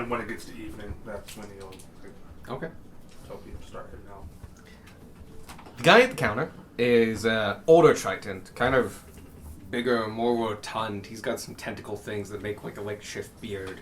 when it gets to evening, that's when he'll like, Okay. tell people to start heading out. The guy at the counter is older Triton, kind of bigger, more rotund. He's got some tentacle things that make like a makeshift beard.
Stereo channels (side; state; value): both; identical; correlation 1.00